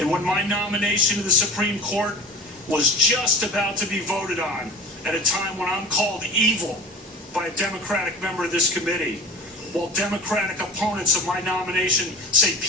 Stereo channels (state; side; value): normal; both; correlation 0.37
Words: when my nomination to the Supreme Court was just about to be voted on at a time when I'm called evil by a Democratic member of this committee, while Democratic opponents of my nomination say